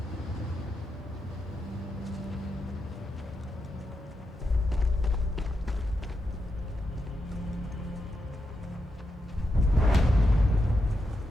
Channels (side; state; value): both; normal; correlation 0.85